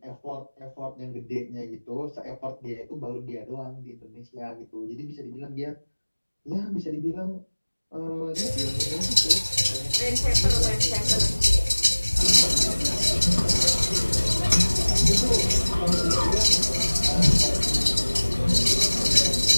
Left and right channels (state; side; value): inverted; both; correlation -1.00